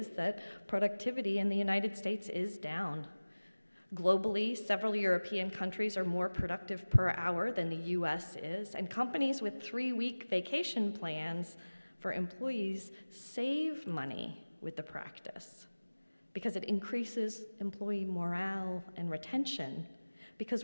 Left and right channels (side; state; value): both; inverted; correlation -1.00